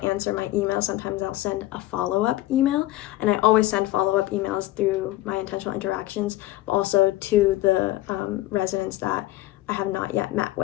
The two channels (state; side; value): quieter; right; 16.3 dB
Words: answer my email. Sometimes I'll send a follow-up email, and I always send follow-up emails through my intentional interactions, but also to the residents that I have not yet met